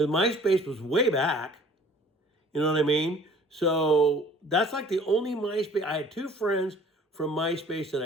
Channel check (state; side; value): normal; both; correlation 0.52